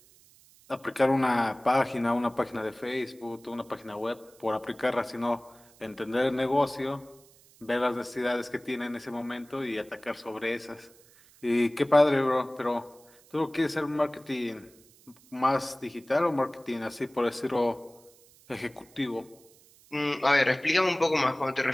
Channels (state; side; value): noise; right; hiss, 27 dB below the sound